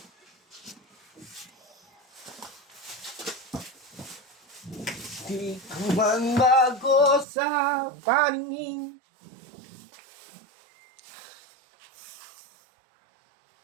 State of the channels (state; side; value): drops out; left; at 7.2 s